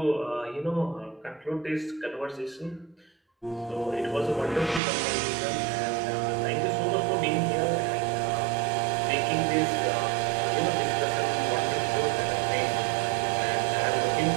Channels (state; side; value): drops out; left; at 4.8 s